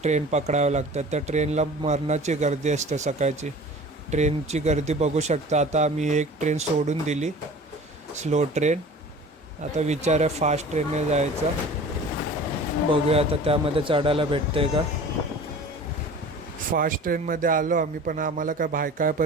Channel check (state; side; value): normal; both; correlation 0.42